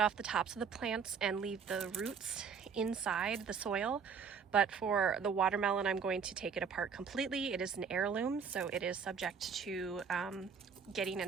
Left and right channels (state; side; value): quieter; left; 6.3 dB